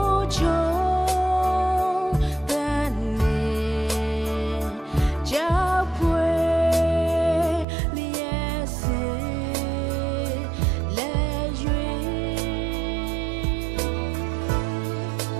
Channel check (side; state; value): left; drops out; at 7.7 s